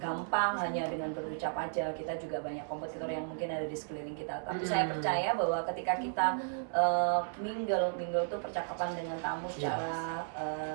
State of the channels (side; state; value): left; silent; 55 dB below the other